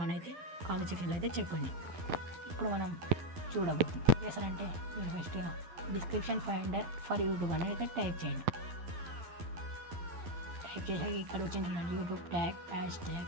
అని అయితే కామెంట్ సెక్షన్లో అయితే చెప్పండి. ఇప్పుడు మనం చూడబోతున్నాం. చేస్తారంటే మీరు ఫస్ట్గా డిస్క్రిప్షన్ ఫైండర్ ఫర్ యూట్యూబ్ అని అయితే టైప్ చేయండి. టైప్ చేసాక ఇక్కడ వచ్చింది యూట్యూబ్ ట్యాగ్ హ్యాష్ ట్యాగ్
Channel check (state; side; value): late; left; 12 ms